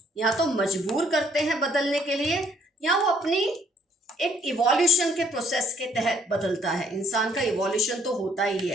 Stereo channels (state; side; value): normal; both; correlation 0.64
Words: या तो मजबूर करते हैं बदलने के लिए, या वो अपनी एक इवोल्यूशन के प्रोसेस के तहत बदलता है। इंसान का इवोल्यूशन तो होता ही